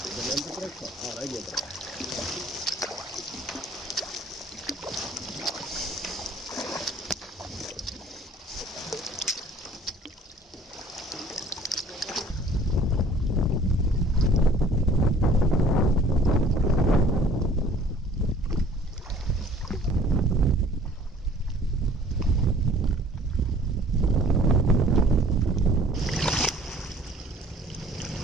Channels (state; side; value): normal; both; correlation 0.53